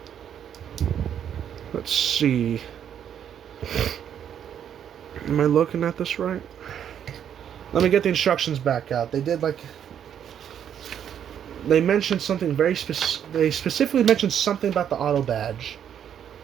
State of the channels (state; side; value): quieter; left; 9.1 dB